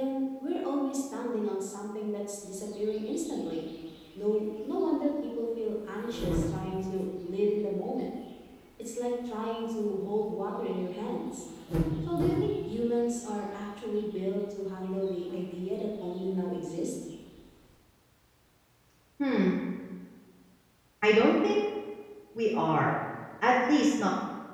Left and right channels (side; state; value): both; identical; correlation 1.00